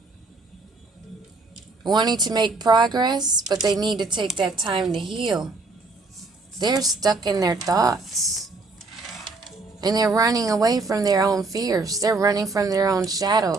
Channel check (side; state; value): left; quieter; 3.6 dB